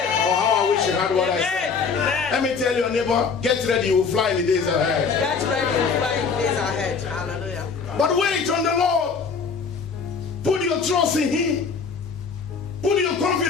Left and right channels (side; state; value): right; quieter; 5.4 dB